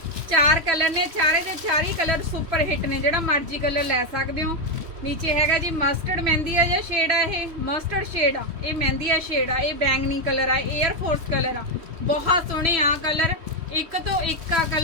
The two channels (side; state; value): left; late; 3.1 ms